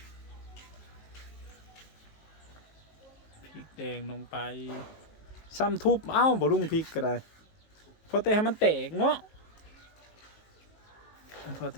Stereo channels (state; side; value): late; right; 19 ms